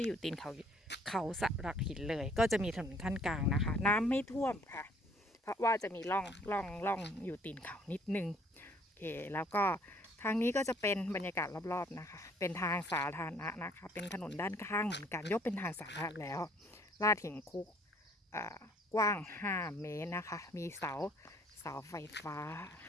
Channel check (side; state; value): both; normal; correlation 0.61